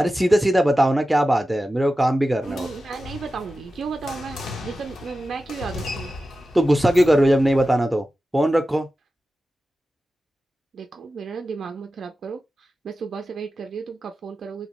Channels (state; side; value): normal; both; correlation 0.93